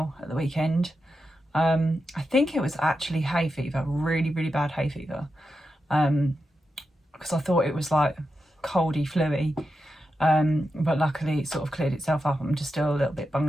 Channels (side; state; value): both; normal; correlation 0.88